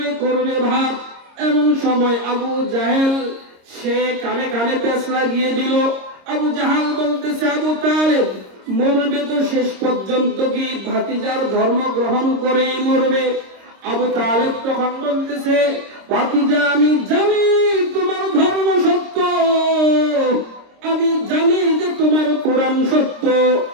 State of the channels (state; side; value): late; left; 26 ms